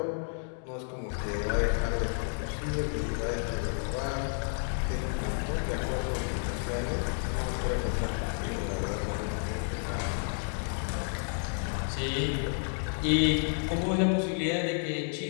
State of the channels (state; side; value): silent; right; 57 dB below the other